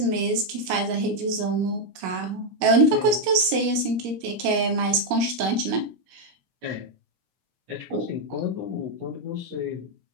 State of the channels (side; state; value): left; late; 17 ms